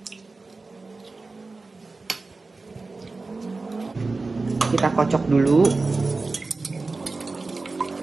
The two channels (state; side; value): quieter; left; 3.7 dB